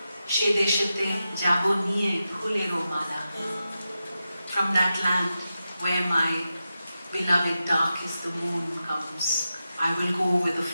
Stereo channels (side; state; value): both; inverted; correlation -0.90